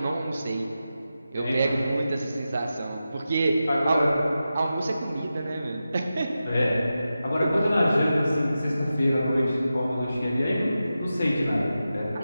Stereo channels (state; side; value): inverted; both; correlation -0.92